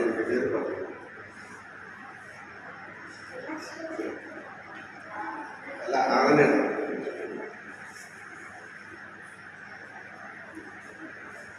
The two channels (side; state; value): both; identical; correlation 1.00